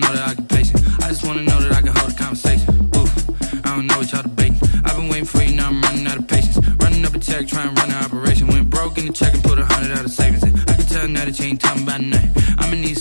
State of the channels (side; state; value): both; inverted; correlation -1.00